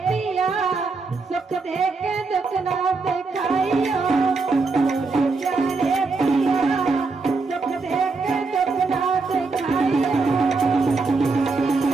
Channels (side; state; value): left; quieter; 4.1 dB